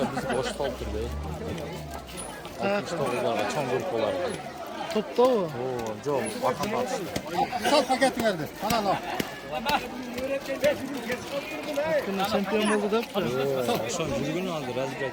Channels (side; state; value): both; identical; correlation 1.00